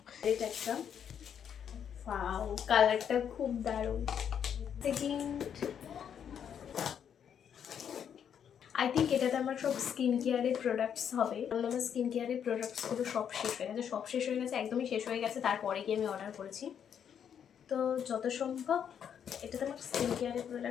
এটা একটা ওয়াও, কালারটা খুব দারুণ। সেকেন্ড আই থিঙ্ক এটাতে আমার সব স্কিন কেয়ারের প্রোডাক্টস হবে, কারণ আমার স্কিন কেয়ারের প্রোডাক্টসগুলো সব শেষ হয়ে গেছে, একদমই শেষ হয়ে গেছে, তারপরে গিয়ে আমি অর্ডার করেছি। তো যত সম্ভব এটাতে আমার স্কিন কেয়ারের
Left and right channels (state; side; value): quieter; right; 8.3 dB